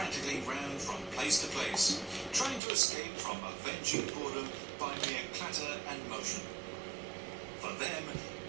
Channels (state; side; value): drops out; left; at 2.6 s